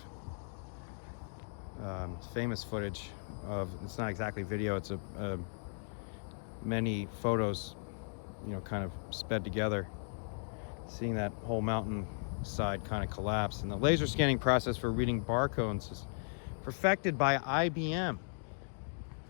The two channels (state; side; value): silent; right; digital silence